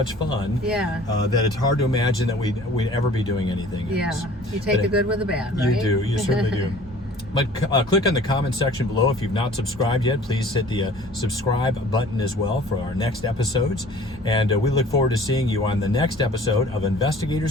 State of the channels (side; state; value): both; normal; correlation 0.49